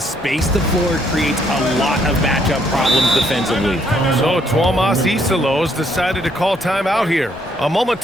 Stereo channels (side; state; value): both; normal; correlation 0.70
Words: space the floor creates a lot of matchup problems defensively. So Tuomas Isalos decided to call timeout here. A moment